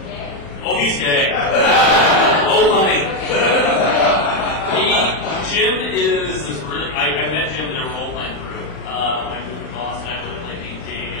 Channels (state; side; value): late; right; 40 ms